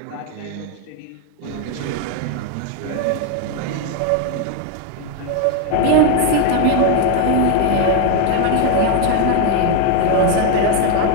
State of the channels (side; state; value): both; different; correlation 0.01